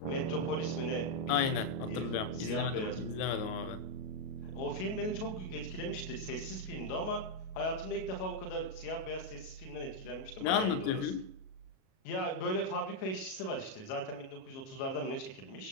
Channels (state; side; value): late; right; 37 ms